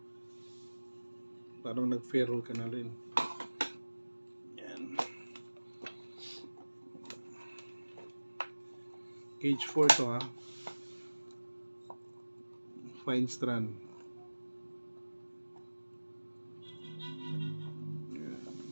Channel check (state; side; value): inverted; both; correlation -1.00